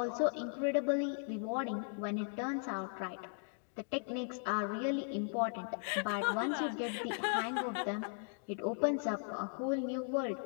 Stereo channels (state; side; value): silent; right; 53 dB below the other